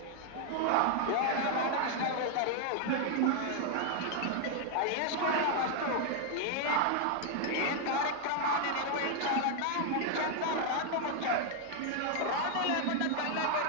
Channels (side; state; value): both; different; correlation 0.00